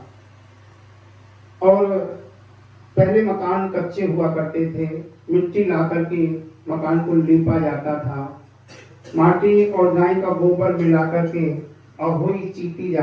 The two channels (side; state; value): both; identical; correlation 1.00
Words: और पहले मकान कच्चे हुआ करते थे, मिट्टी ला करके मकान को लीपा जाता था, माटी और गाय का गोबर मिला करके अहोई चीती